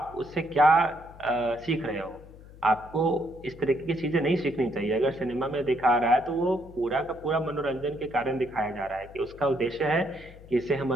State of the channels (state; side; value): noise; left; hum, 20 dB below the sound